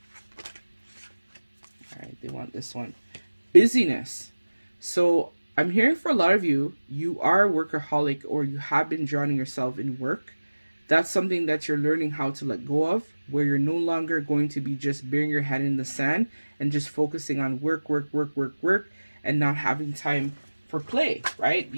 They want this one. Busyness. So I'm hearing for a lot of you, you are a workaholic or you have been drowning yourself in work. That's something that you're learning how to let go of, where you're no longer going to be just burying your head in the sand and just focusing on work, and not having time for play, right?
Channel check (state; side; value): inverted; both; correlation -1.00